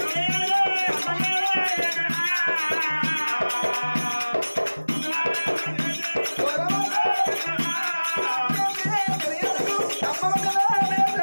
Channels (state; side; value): inverted; both; correlation -1.00